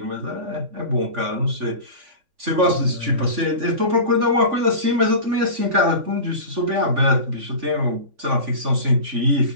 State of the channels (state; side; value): late; left; 3.5 ms